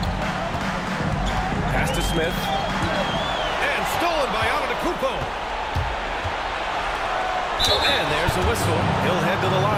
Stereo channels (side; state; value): both; identical; correlation 1.00